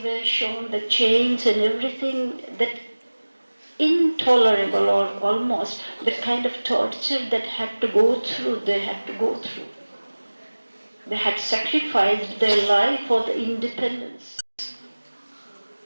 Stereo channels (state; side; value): inverted; both; correlation -1.00